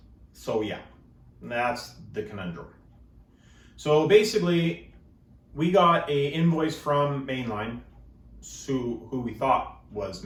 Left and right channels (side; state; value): both; identical; correlation 1.00